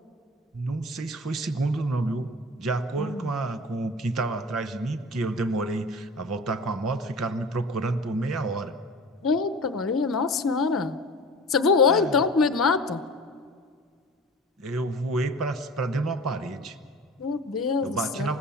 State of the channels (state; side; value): normal; both; correlation 0.38